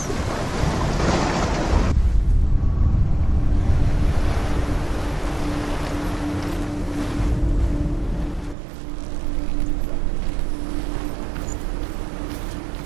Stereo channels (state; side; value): drops out; left; at 8.6 s